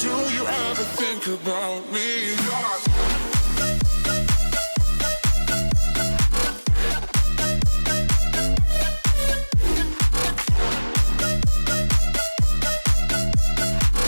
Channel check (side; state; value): both; inverted; correlation -1.00